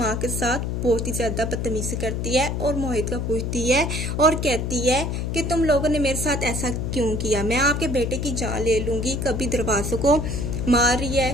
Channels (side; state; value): left; noise; hum, 2 dB below the sound